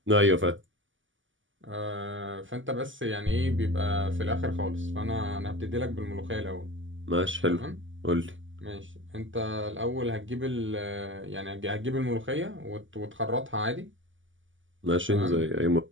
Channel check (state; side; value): late; left; 0.56 ms